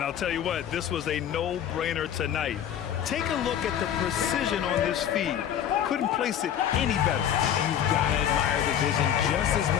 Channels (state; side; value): quieter; right; 9.8 dB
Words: I'll tell you what, this was a no-brainer tonight. Take a look at the precision on this feed. Couldn't place it any better. You've got to admire the vision just as